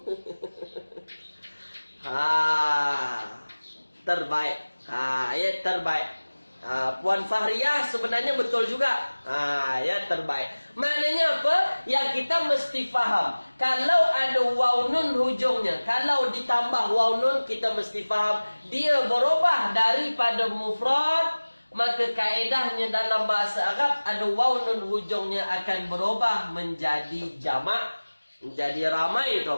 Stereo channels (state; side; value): inverted; both; correlation -1.00